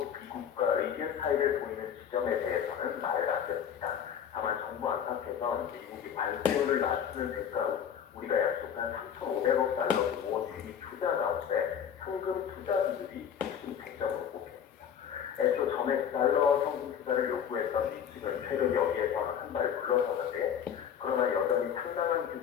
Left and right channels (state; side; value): quieter; right; 8.5 dB